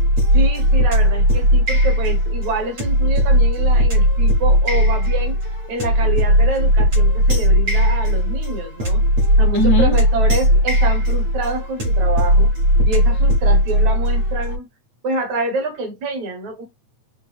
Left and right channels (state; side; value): late; left; 8.6 ms